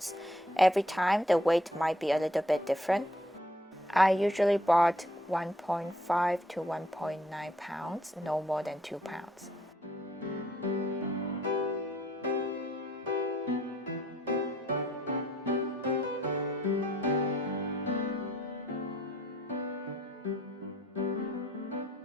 Every time the weight might be a little bit different. I usually bought 1.5 to 1.9 pounds, no more than 2 pounds.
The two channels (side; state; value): both; normal; correlation 0.65